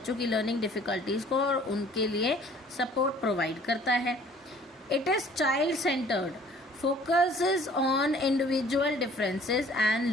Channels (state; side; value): normal; both; correlation 0.54